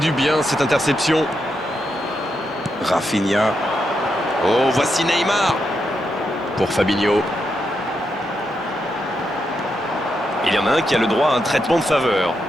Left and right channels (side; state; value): both; normal; correlation 0.83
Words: bien cette interception. Rafinha. Oh, voici Neymar. Pour Fabinho. Il y en a un qui a le droit à un traitement de faveur.